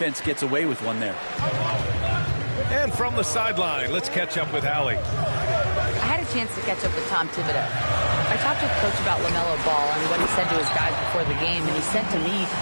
gets away with one there. And from the sideline, let's catch up with Allie. I had a chance to catch up with Tom Thibodeau. I talked with Coach about LaMelo Ball and what he said to his guys before the game, and he said to me,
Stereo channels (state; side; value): inverted; both; correlation -1.00